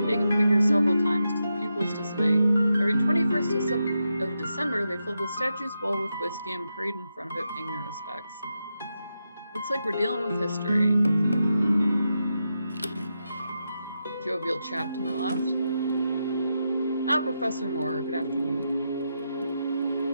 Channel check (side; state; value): both; inverted; correlation -0.86